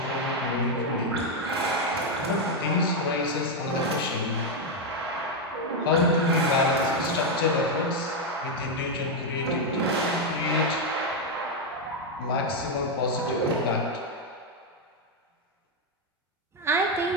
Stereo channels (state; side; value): normal; both; correlation 0.03